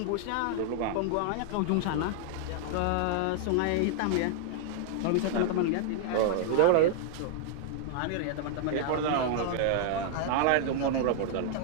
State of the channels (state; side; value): different; both; correlation -0.01